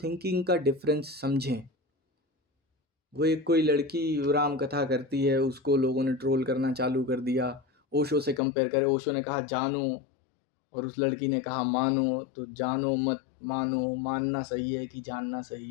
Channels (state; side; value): drops out; right; at 8.4 s